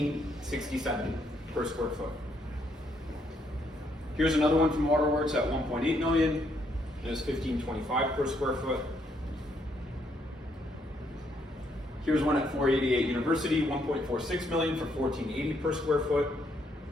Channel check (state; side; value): normal; both; correlation 0.73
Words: per square foot. Here's another one from Waterworks at $1.8 million, and it was $1,525 per square foot. Here's one at 488 University, $1.46 million for $1,480 per square foot.